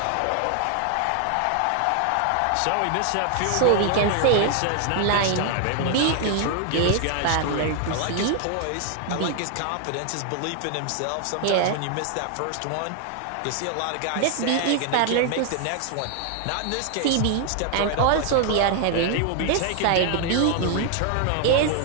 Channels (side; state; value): both; different; correlation 0.00